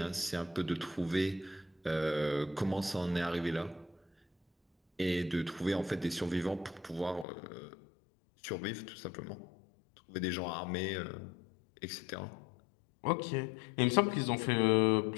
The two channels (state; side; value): drops out; right; at 7.2 s